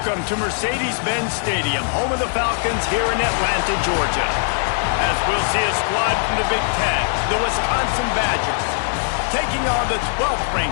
to Mercedes-Benz Stadium, home of the Falcons here in Atlanta, Georgia. As we'll see a squad from the Big Ten, the Wisconsin Badgers, taking on the 12th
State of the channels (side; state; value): right; silent; digital silence